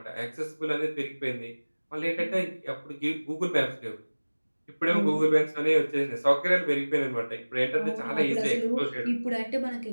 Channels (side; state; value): both; inverted; correlation -1.00